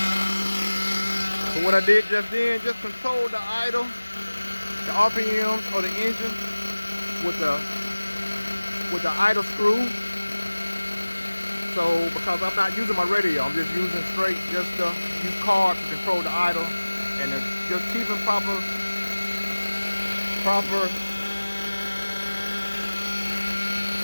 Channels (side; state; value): both; inverted; correlation -1.00